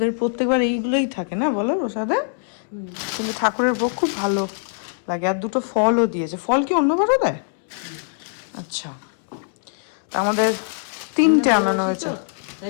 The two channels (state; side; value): silent; right; 64 dB below the other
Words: প্রত্যেকবার এইগুলোই থাকে না বলো প্রসাদে, কিন্তু ঠাকুরের ভোগ খুব ভালো লাগে। আর 2টো ফলও দিয়েছে। ফল কি অন্যবারও দেয়? আচ্ছা, তা আমাদের 3টে আনানো হয়েছে।